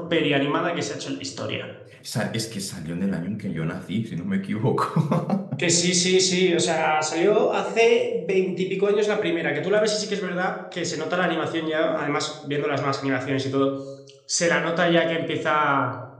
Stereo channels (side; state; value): both; identical; correlation 1.00